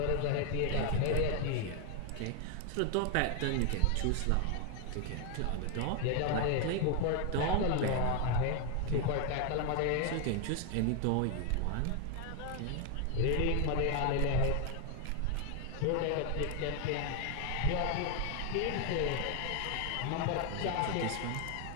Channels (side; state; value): both; different; correlation 0.00